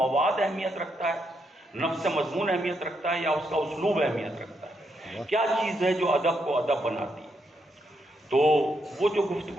اہمیت رکھتا ہے، نفس مضمون اہمیت رکھتا ہے، یا اس کا اسلوب اہمیت رکھتا ہے؟ کیا چیز ہے جو ادب کو ادب بناتی ہے؟ تو وہ جو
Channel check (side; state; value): both; normal; correlation 0.79